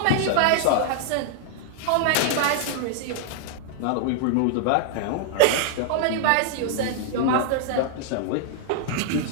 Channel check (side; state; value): both; different; correlation -0.01